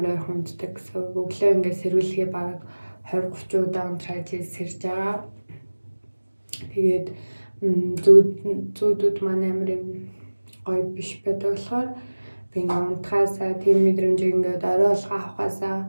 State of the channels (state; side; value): inverted; both; correlation -1.00